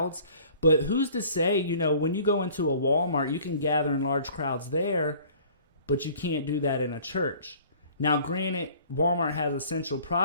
but who's to say, when you go into a Walmart, you can gather in large crowds there, but you can't do that in a church. Now, granted, Walmart has essential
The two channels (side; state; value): both; inverted; correlation -0.51